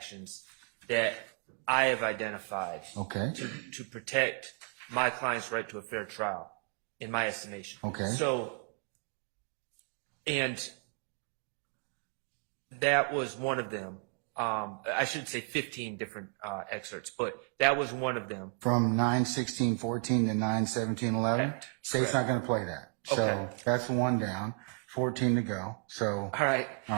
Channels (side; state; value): left; quieter; 38.1 dB